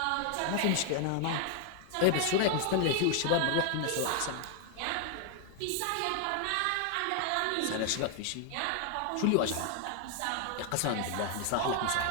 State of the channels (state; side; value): different; both; correlation 0.00